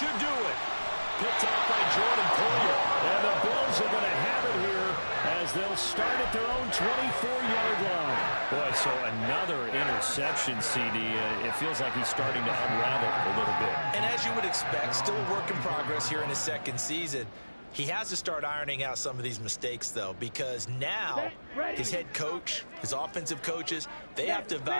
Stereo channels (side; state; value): both; inverted; correlation -1.00